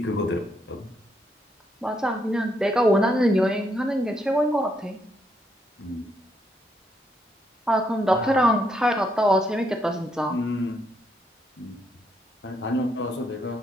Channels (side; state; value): both; normal; correlation 0.76